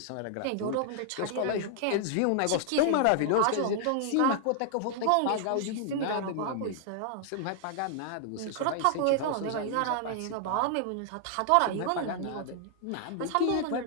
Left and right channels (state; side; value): different; both; correlation 0.00